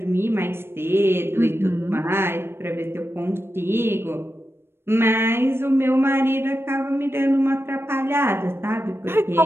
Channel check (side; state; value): left; late; 0.12 ms